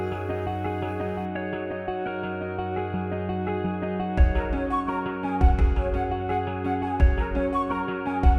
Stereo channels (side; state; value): both; identical; correlation 1.00